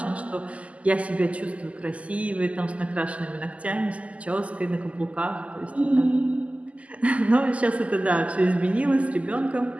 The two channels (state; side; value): late; left; 0.067 ms